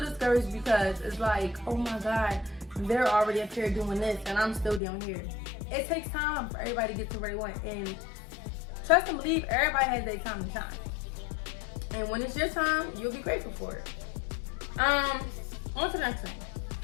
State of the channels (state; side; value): drops out; right; at 4.8 s